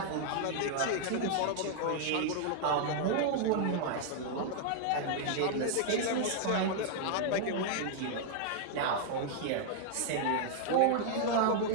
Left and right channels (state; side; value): different; both; correlation -0.01